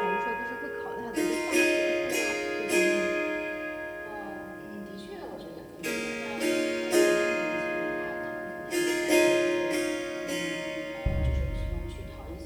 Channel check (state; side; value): identical; both; correlation 1.00